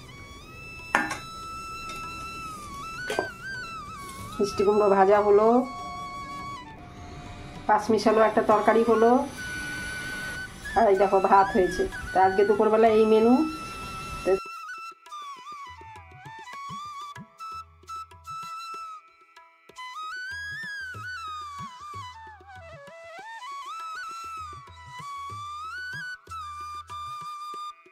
মিষ্টি কুমড়ো ভাজা হলো, পাঁচ মিশালো একটা তরকারি হলো, আর এই দেখো ভাত হয়েছে। তা আজকে দুপুরবেলা এই মেনু।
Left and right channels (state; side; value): identical; both; correlation 1.00